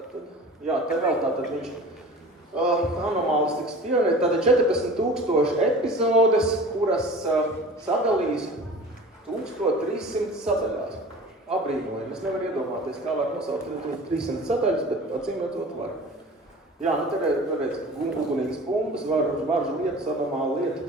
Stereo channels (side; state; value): both; normal; correlation 0.41